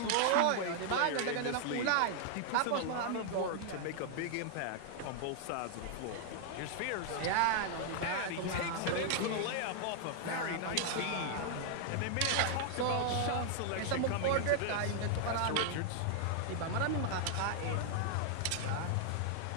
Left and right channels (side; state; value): both; different; correlation 0.00